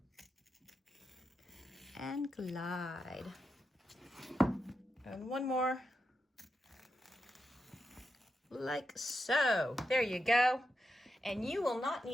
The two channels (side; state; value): both; normal; correlation 0.87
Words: And glide. And one more. Like so. There you go. And you will not